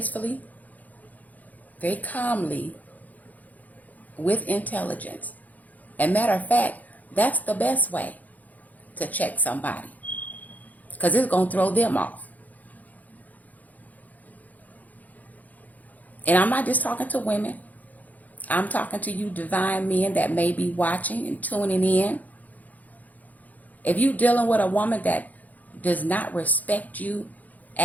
very calmly, with intelligence. And matter of fact, that's the best way to check somebody, because it's going to throw them off. And I'm not just talking to women. I'm talking to you divine men that may be watching and tuning in. If you're dealing with a woman that does not respect you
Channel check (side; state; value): right; late; 0.079 ms